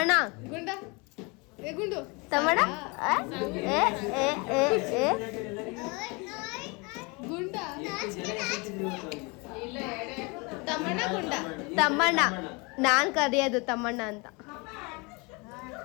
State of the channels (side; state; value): right; quieter; 28.7 dB